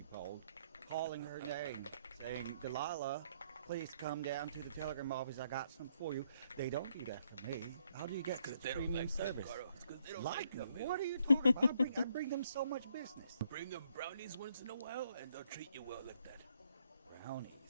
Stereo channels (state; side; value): inverted; both; correlation -0.71